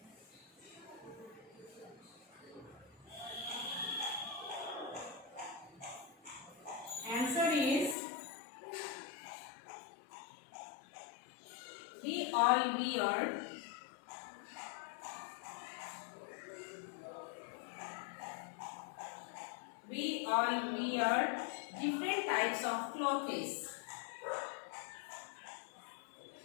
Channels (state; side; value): drops out; right; at 8.0 s